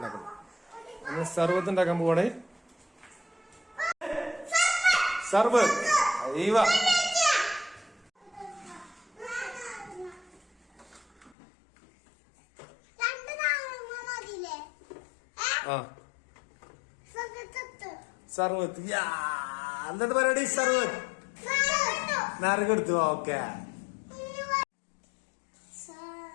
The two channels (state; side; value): drops out; right; at 11.4 s